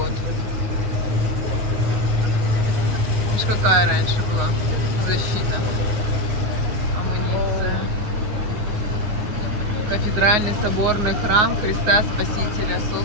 Видишь, какая раньше была защита, амуниция. Кафедральный соборный храм Христа Спасителя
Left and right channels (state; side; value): late; left; 9.5 ms